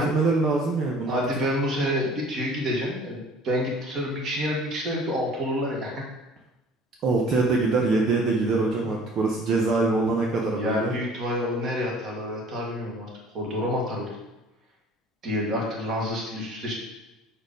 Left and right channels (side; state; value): both; normal; correlation 0.50